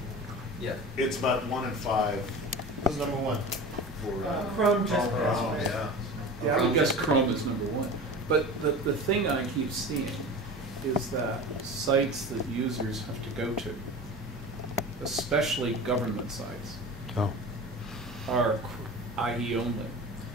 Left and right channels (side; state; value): both; normal; correlation 0.33